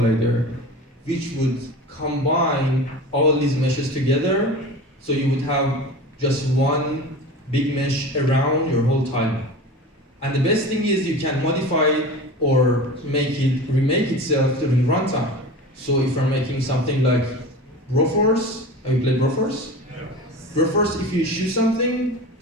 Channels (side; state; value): both; normal; correlation 0.33